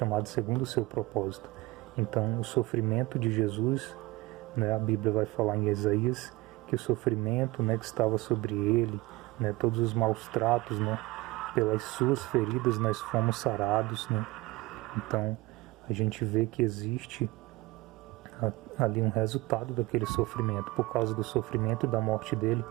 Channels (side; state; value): left; quieter; 21.0 dB